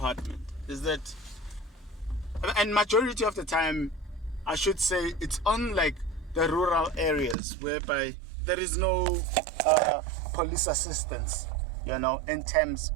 Is that, and majority of the time, I should say, it's unlike the rural areas whereby there is no police assistance, you know, in terms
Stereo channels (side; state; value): left; drops out; at 7.4 s